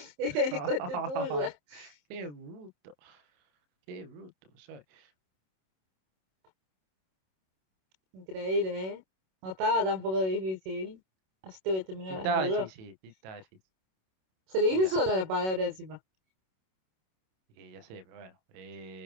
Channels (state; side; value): late; left; 27 ms